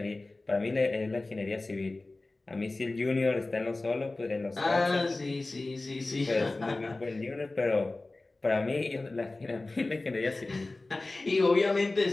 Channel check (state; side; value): quieter; right; 3.1 dB